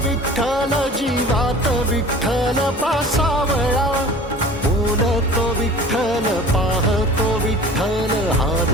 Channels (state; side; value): normal; both; correlation 0.43